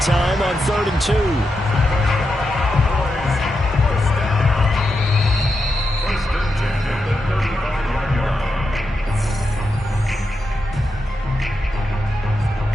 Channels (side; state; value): both; normal; correlation 0.87